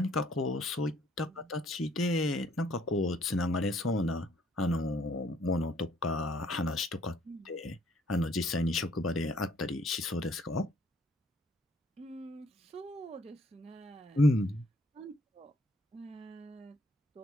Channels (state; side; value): normal; both; correlation 0.64